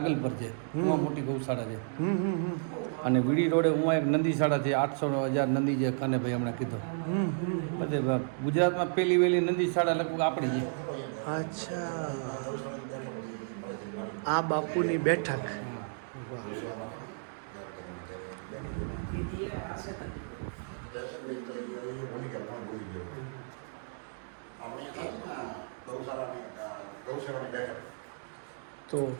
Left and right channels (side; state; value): left; silent; digital silence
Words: પર છે, એમાં મોટી ગૌશાળા છે. અને વીડી રોડે ઉમાં એક નંદીશાળા છે, 800,000 નંદી છે, કાનેભાઈ હમણાં કીધું. બધે ગુજરાતમાં પહેલી વહેલી નંદીશાળા લગભગ આપણી છે. અચ્છા, આ બાપુની બેઠક. તો